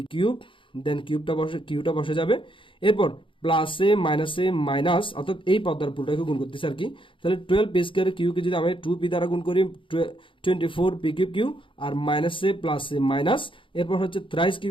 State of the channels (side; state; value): right; late; 0.25 ms